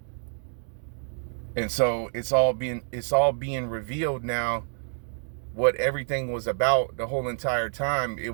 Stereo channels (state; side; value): silent; left; digital silence